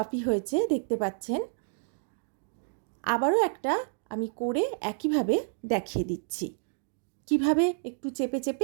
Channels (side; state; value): left; silent; digital silence